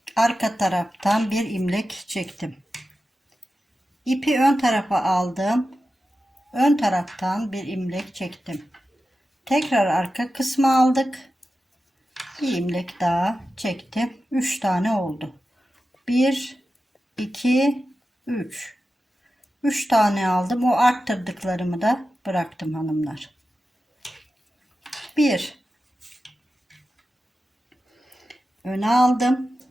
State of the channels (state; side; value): normal; both; correlation 0.92